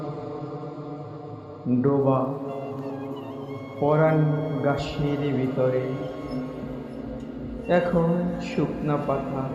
ডোবা পরাণ গাছের ভিতরে। এখন শুকনা পাতা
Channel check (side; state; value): both; identical; correlation 1.00